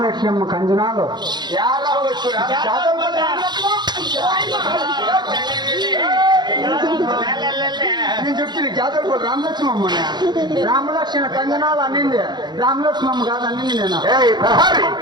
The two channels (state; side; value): late; left; 0.21 ms